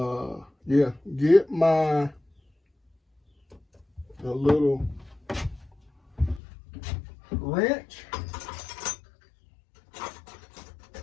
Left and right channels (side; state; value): right; drops out; at 6.4 s